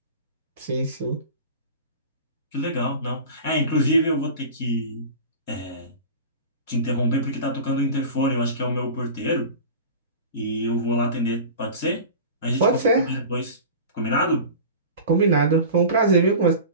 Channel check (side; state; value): both; inverted; correlation -0.34